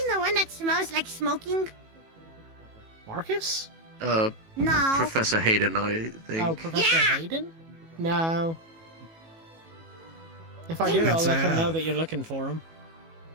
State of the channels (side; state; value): left; late; 18 ms